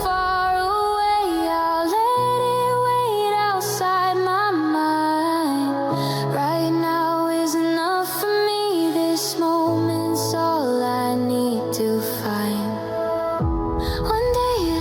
far away, I'll let it wait outside my mind. Right now is enough for me, this moment's all I need to find. One day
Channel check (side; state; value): both; identical; correlation 1.00